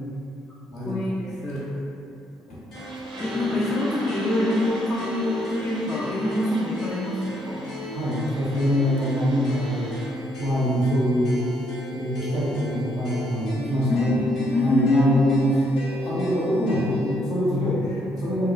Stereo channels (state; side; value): normal; both; correlation 0.72